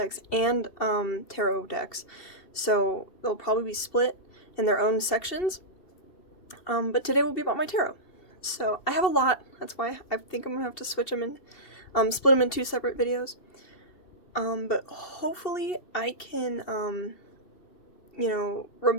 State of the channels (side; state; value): right; late; 2.7 ms